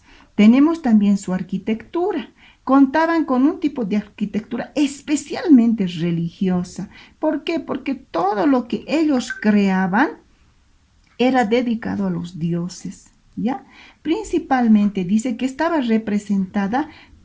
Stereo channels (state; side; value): identical; both; correlation 1.00